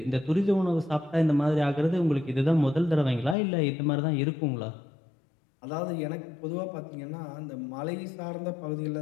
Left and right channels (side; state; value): right; drops out; at 3.4 s